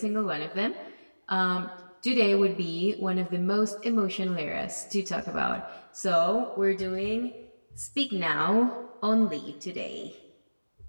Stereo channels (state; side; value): inverted; both; correlation -1.00